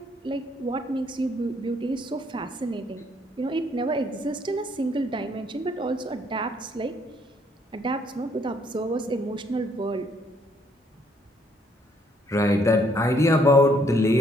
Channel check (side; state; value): both; normal; correlation 0.68